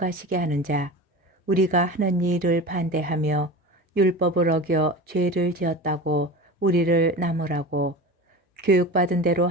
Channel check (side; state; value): both; normal; correlation 0.31